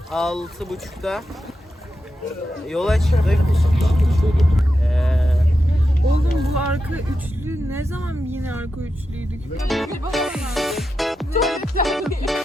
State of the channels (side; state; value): both; normal; correlation 0.88